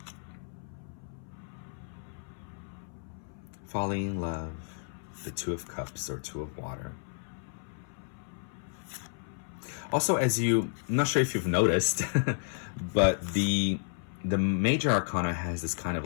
Falling in love. The 2 of cups or 2 of water. Also, I'm not sure if you've noticed, but the major arcana has this kind of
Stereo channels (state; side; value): silent; right; 56 dB below the other